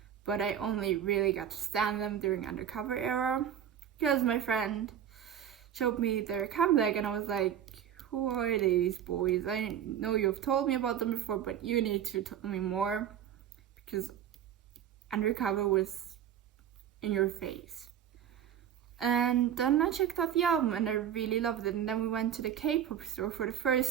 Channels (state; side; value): quieter; left; 9.7 dB